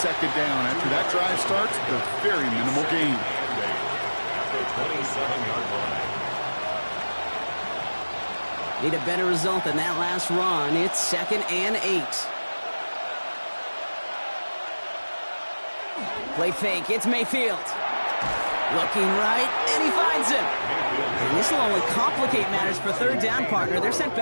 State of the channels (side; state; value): both; inverted; correlation -1.00